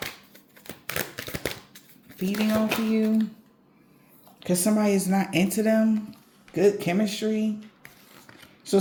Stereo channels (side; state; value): both; identical; correlation 1.00